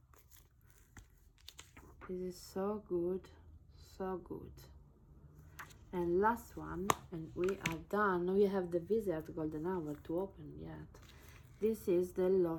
This is so good, so good. And last one, and we are done. We have the Visit Golden Hour to open yet. This is the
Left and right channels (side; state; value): both; identical; correlation 1.00